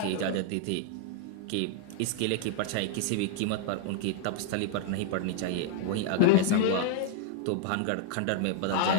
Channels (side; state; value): both; different; correlation -0.01